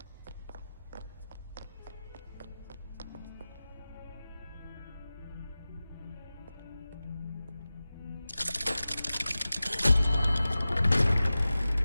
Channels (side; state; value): both; inverted; correlation -0.96